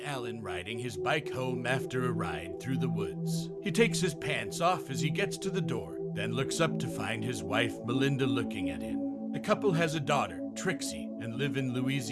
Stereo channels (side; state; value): both; identical; correlation 1.00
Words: riding his bike home after a ride through the woods. He takes his pants off as he gets to the door, then looks up to find his wife Melinda looking at him. The couple has a daughter, Trixie, and live in